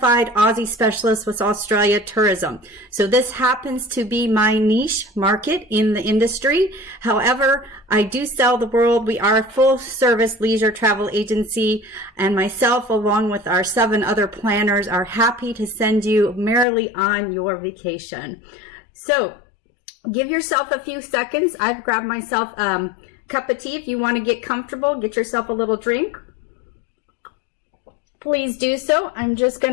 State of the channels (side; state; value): right; drops out; at 16.7 s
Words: Aussie specialist with Australia Tourism. So this happens to be my niche market in the industry. However, I do sell the world. We are a full service leisure travel agency, and myself, along with our 7 other planners, are happy to send you merrily on your vacation. So give yourself a few seconds. I've grabbed myself cup of tea. If you want to get comfortable, get yourself a little drink. Please do so. I'm just going